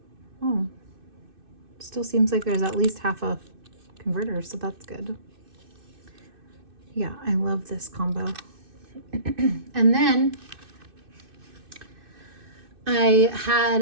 Oh, still seems like there's at least half a converter, so that's good. Yeah, I love this combo. And then I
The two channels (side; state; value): left; late; 2.6 ms